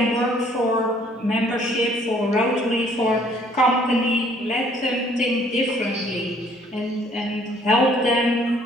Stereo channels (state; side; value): normal; both; correlation 0.60